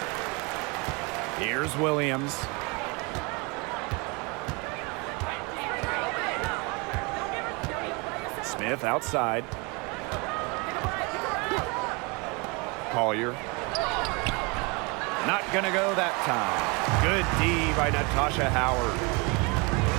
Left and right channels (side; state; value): left; quieter; 29.2 dB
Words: Here's Williams. Smith outside. Collier. Not gonna go that time. Good D by Natasha Howard.